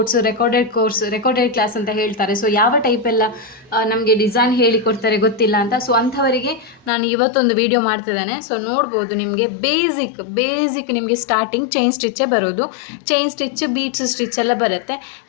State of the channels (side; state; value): right; drops out; at 6.9 s